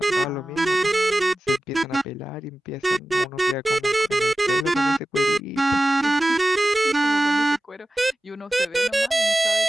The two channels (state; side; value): normal; both; correlation 0.96